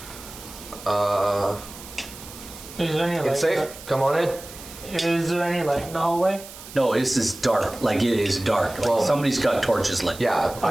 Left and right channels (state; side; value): noise; right; hiss, 16 dB below the sound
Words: Is there any light? It's safe. Come on in. Is there any light in the hallway? No, this is dark. Like, it is dark. Like, Well- somebody's got torches lit. Yeah,